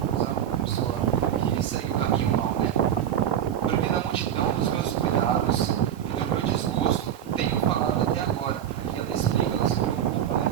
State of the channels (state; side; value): quieter; left; 10.0 dB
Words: pessoa que segue o caminho mal, né? Porque na multidão dos meus cuidados e do meu desgosto tenho falado até agora. E ela explica, ela se preocupa, né?